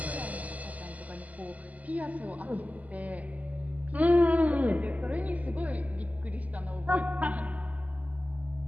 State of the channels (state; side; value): late; left; 0.075 ms